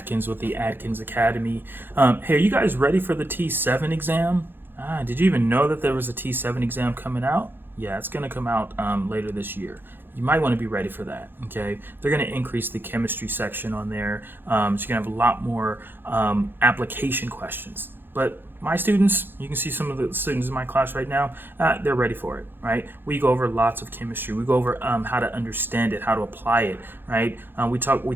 with the Adkins Academy. Hey, are you guys ready for the TEAS VII exam? Did you even know that there was a TEAS VII exam coming out? Yeah, it's going to come out later this year. You might want to be ready for that, okay? They're going to increase the chemistry section on there, so you're going to have a lot more application questions. But my students, you can see some of the students in my class right now, they're ready for it, right? We go over lots of chemistry. We go over how to understand it, how to apply it, right? We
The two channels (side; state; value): left; late; 0.10 ms